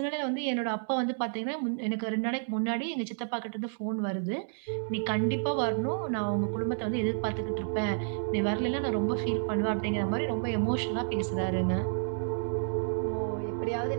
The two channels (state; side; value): silent; left; digital silence